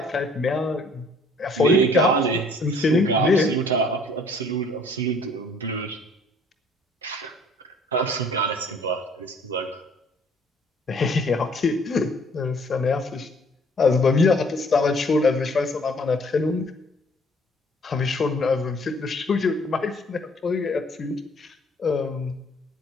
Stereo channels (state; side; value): normal; both; correlation 0.58